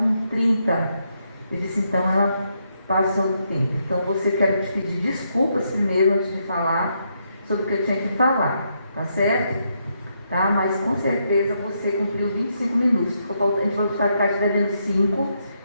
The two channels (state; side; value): inverted; both; correlation -0.79